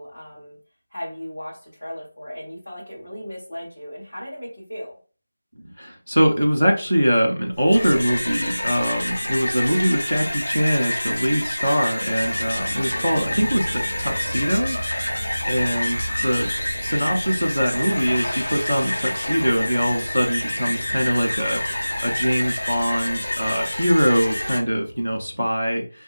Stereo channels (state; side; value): inverted; both; correlation -0.97